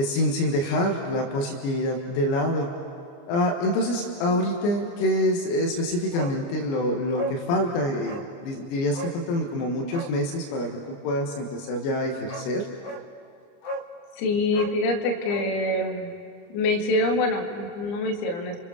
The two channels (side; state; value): right; late; 29 ms